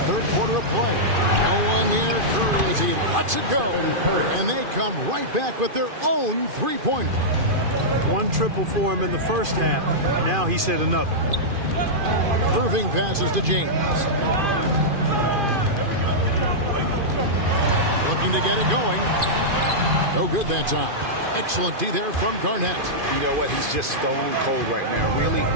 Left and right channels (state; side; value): late; left; 2.5 ms